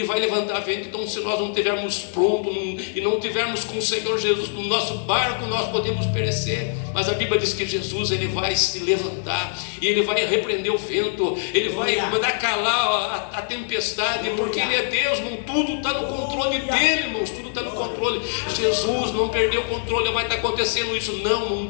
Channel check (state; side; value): silent; right; digital silence